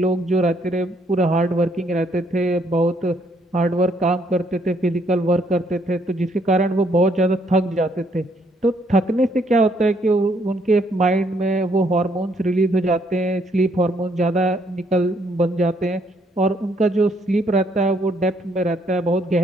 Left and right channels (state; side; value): normal; both; correlation 0.70